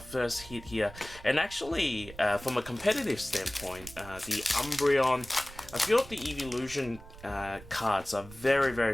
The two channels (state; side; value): noise; right; rumble, 17 dB below the sound